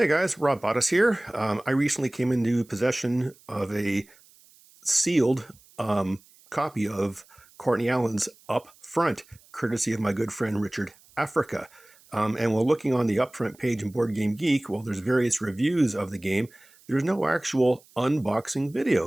guys, Rob Bottas here. I recently came into possession of a sealed copy of Courtney Allen's Up Front, courtesy of my good friend Richard Africa. And while looking on the Upfront page in Board Game Geek, while there's various reviews of the game, there's no actual unboxing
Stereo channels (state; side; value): noise; right; hiss, 28 dB below the sound